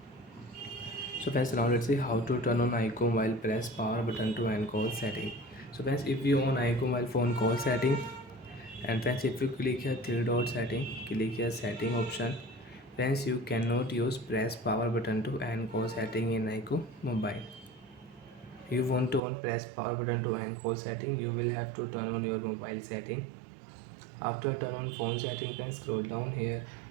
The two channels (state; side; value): drops out; left; at 19.2 s